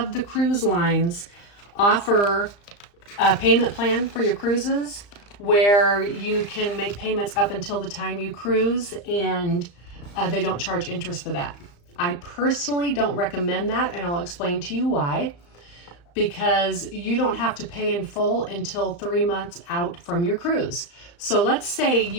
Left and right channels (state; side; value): late; right; 35 ms